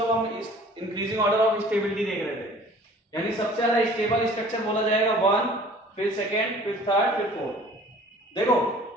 हम इंक्रीजिंग ऑर्डर ऑफ स्टेबिलिटी देख रहे थे। यानी सबसे ज्यादा स्टेबल स्ट्रक्चर बोला जाएगा 1, फिर सेकंड, फिर थर्ड, फिर फोर्थ। देखो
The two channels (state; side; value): normal; both; correlation 0.49